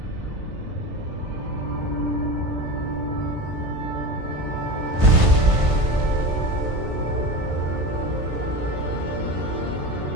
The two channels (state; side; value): late; left; 1.5 ms